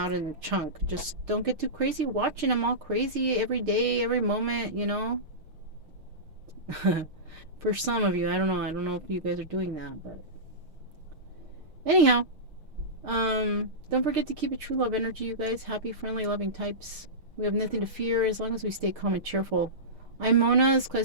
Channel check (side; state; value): left; late; 6.5 ms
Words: in a chunk. Just don't get too crazy watching them all crazy every day, every moment. You know. For some of you, I don't know. I don't know if you guys are doing that, but anyhow, don't forget to keep it true love energy, you guys. Happy, friendly, loving types. We have nothing to fear as long as we stay calm and cheerful. I'm Mona's